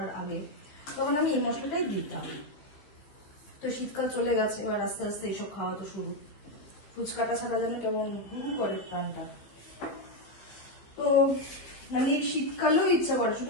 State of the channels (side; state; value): right; late; 15 ms